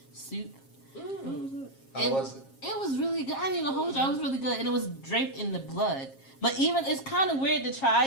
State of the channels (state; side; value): late; right; 7.4 ms